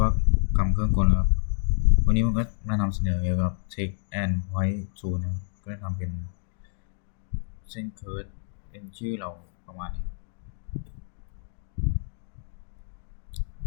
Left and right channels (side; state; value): right; silent; 59 dB below the other